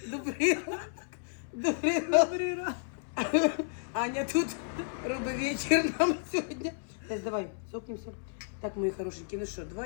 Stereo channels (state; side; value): silent; right; 56 dB below the other